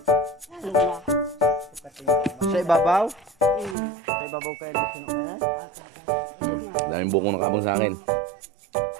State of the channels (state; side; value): drops out; left; at 3.8 s